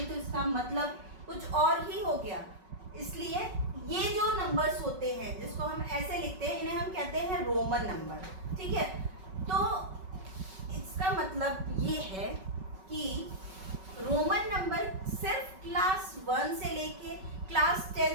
तो इसका मतलब कुछ और ही हो गया. इसलिए ये जो नंबर्स होते हैं जिसको हम ऐसे लिखते हैं इन्हें हम कहते हैं रोमन नंबर. ठीक है, तो इसका मतलब ये है कि रोमन नंबर सिर्फ क्लास 1 से लेके क्लास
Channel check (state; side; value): late; left; 5.3 ms